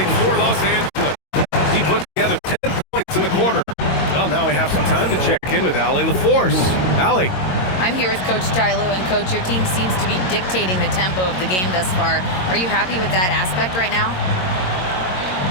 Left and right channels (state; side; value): late; right; 22 ms